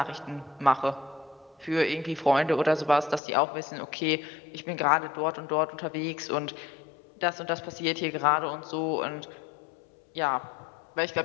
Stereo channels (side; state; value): right; drops out; at 3.2 s